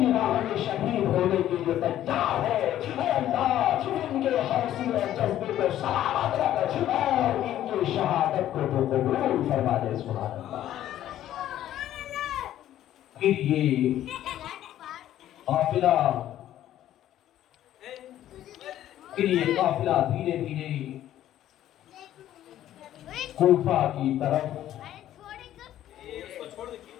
راہ میں شہید ہونے کے لیے تیار ہے۔ اے اللہ ان کے حوصلے اور جذبے کو سلامت رکھ اور ان کی شہادت کو تو قبول فرما دے۔ سبحان اللہ۔ پھر یہ قافلہ دھیرے دھیرے کوفہ کی طرف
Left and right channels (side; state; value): right; quieter; 12.4 dB